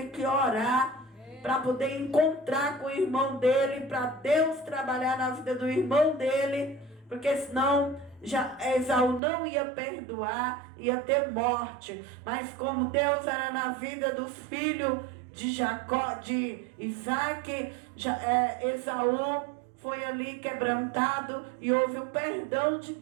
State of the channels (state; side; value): drops out; left; at 9.2 s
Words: que orar para poder encontrar com o irmão dele, para Deus trabalhar na vida do irmão dele, porque senão Esaú não ia perdoar, ia ter morte. Mas como Deus era na vida dos filhos de Jacó, de Isaac, Esaú foi ali quebrantado e houve o perdão de